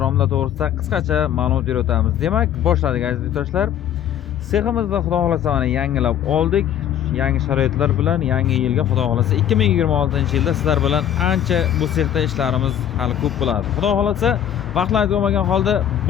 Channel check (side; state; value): right; quieter; 10.1 dB